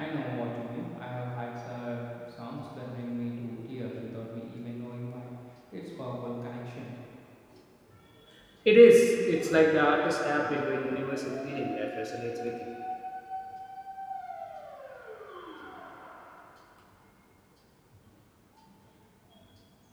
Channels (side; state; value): both; identical; correlation 1.00